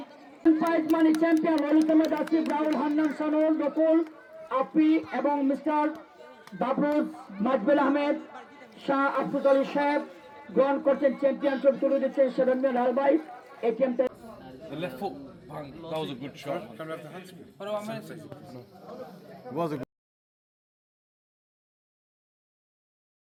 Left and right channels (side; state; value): both; identical; correlation 1.00